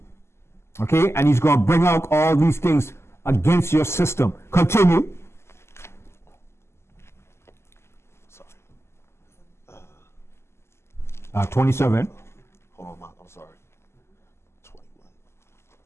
Okay? And he's going to bring out all these things against your system. Continue. Sorry. 27. Hold on, I'm sorry.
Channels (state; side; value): late; right; 0.13 ms